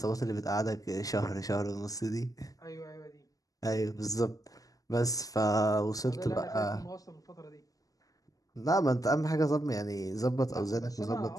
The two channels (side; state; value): right; late; 0.17 ms